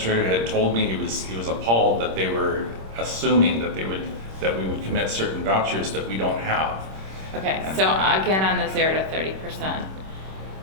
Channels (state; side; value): late; left; 26 ms